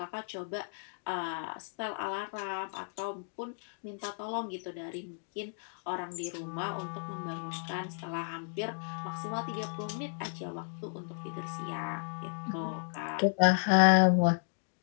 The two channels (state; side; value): silent; right; digital silence